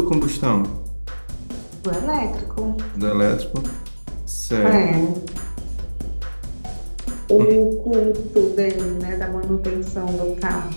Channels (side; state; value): both; inverted; correlation -1.00